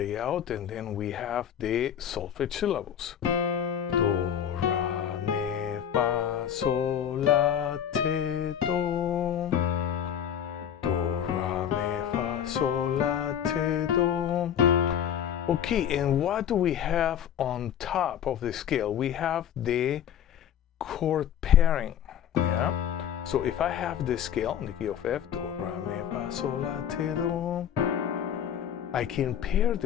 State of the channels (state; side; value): quieter; right; 9.3 dB